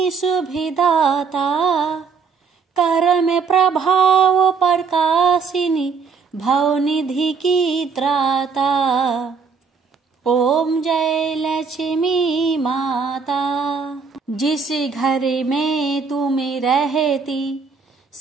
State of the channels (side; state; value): left; quieter; 5.4 dB